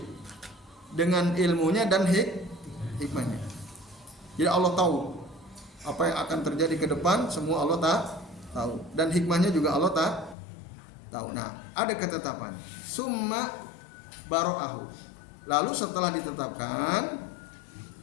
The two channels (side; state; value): right; drops out; at 10.4 s